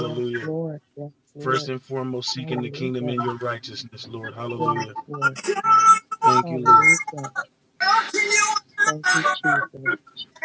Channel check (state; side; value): identical; both; correlation 1.00